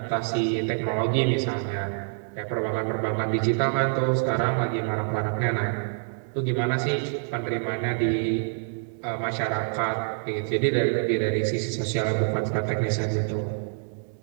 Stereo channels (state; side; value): silent; left; digital silence